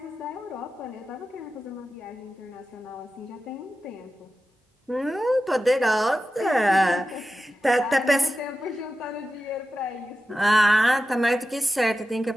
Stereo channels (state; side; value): normal; both; correlation 0.92